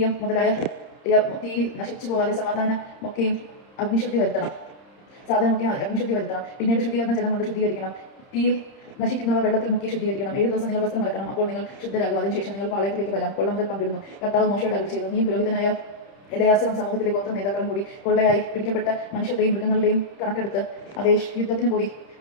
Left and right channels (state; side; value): late; right; 30 ms